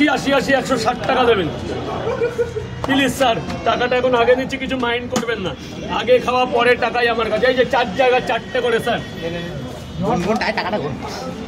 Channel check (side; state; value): both; identical; correlation 1.00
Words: 80 80 160 টাকা দেবেন প্লিজ স্যার। টাকাটা এখন আগে নিচ্ছি, কিছু মাইন্ড করবেন না। আগে খাওয়া পরে টাকাই আমার কাছে। এই যে 4 জায়গা 4টে করে স্যার।